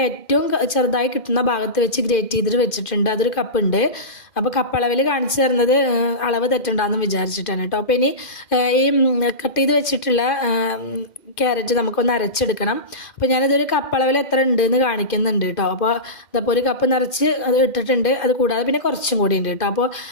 ഏറ്റവും ചെറുതായി കിട്ടുന്ന ഭാഗത്ത് വെച്ച് ഗ്രേറ്റ് ചെയ്തിട്ട് വെച്ചിട്ടുണ്ട്. അതൊരു കപ്പ് ഉണ്ട്. അപ്പോൾ കപ്പ് അളവിൽ കാണിച്ചു തരുന്നത് അളവ് തെറ്റുണ്ടാന്ന് വിചാരിച്ചിട്ടാണ് കേട്ടോ. അപ്പോൾ ഇനി ഈ കട്ട് ചെയ്ത് വെച്ചിട്ടുള്ള ക്യാരറ്റ് നമുക്കൊന്ന് അരച്ചെടുക്കണം. അപ്പോൾ ഞാനിതൊരു കപ്പ് അളവിൽ എത്ര ഉണ്ട് എന്ന് കാണിക്കുന്നുണ്ട് കേട്ടോ. അപ്പോൾ ഇതപ്പോൾ ഒരു കപ്പ് നിറച്ച് അത് ഇട്ടിട്ടുണ്ട്. അത് കൂടാതെ പിന്നെ കുറച്ചും കൂടി ഉണ്ട് കേട്ടോ. അപ്പോൾ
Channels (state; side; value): late; right; 2.5 ms